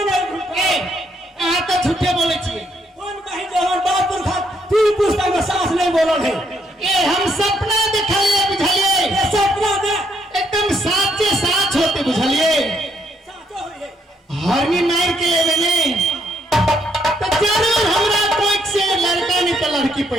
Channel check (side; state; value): both; normal; correlation 0.72